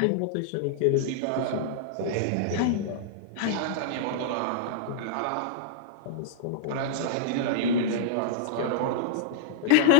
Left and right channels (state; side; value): different; both; correlation -0.02